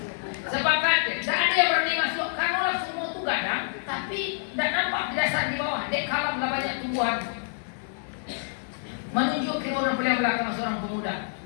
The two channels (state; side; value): silent; right; digital silence